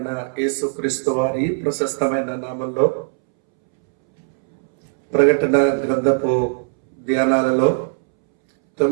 యేసుక్రీస్తు వారి ప్రశస్తమైన నామంలో ప్రకటన గ్రంథపు ధ్యానాలలో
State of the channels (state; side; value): silent; left; 66 dB below the other